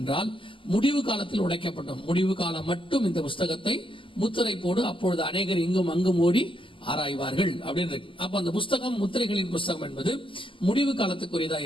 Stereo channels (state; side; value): late; right; 0.25 ms